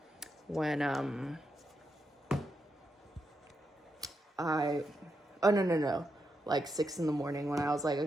when like 6 in the morning when I was like,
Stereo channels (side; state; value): both; normal; correlation 0.84